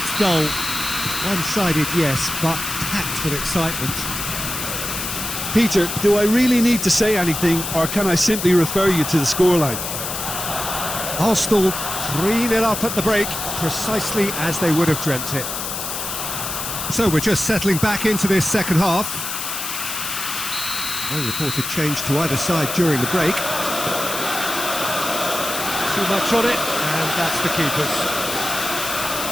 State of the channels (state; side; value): noise; left; hiss, 4 dB below the sound